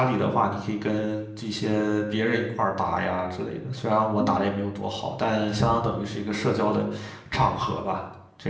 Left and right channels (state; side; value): identical; both; correlation 1.00